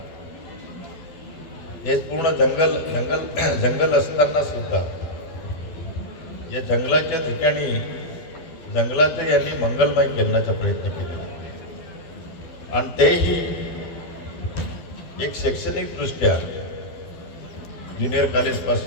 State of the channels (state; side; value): late; right; 12 ms